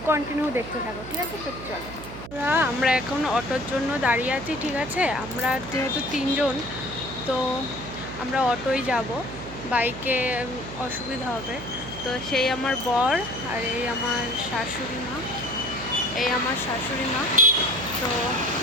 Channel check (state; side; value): noise; right; hum, 12 dB below the sound